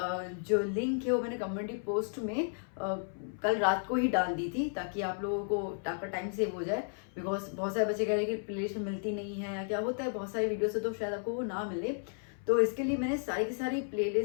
जो लिंक है वो मैंने कम्युनिटी पोस्ट में कल रात को ही डाल दी थी ताकि आप लोगों को आपका टाइम सेव हो जाए। बिकॉज बहुत सारे बच्चे कह रहे हैं कि प्लेलिस्ट में मिलती नहीं है या क्या होता है, बहुत सारी वीडियो से तो शायद आपको वो ना मिले। तो इसके लिए मैंने सारी की सारी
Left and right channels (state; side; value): silent; right; 56 dB below the other